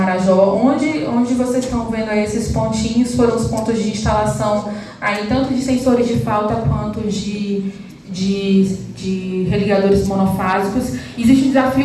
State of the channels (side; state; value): both; identical; correlation 1.00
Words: onde vocês estão vendo aí esses pontinhos, foram os pontos de instalação aí, tanto de sensores de falta quanto de religadores monofásicos. Existe um